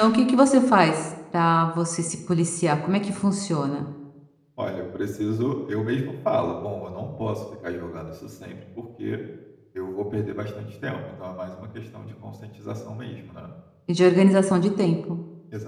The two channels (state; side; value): identical; both; correlation 1.00